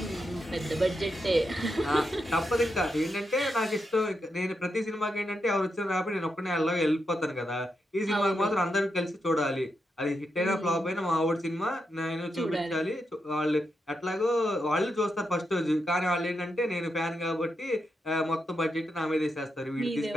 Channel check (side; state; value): both; normal; correlation 0.84